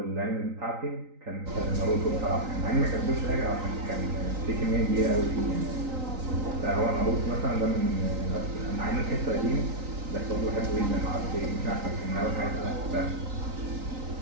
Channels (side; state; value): left; late; 3.9 ms